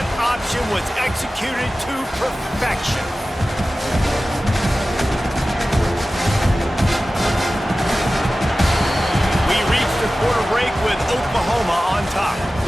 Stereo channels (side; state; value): both; normal; correlation 0.96